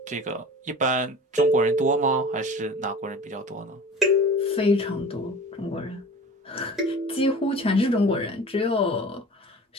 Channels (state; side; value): normal; both; correlation 0.38